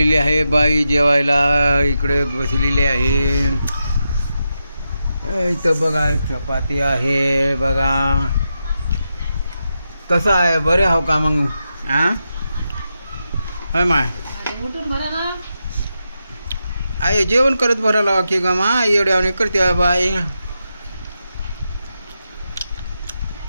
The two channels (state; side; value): inverted; both; correlation -0.87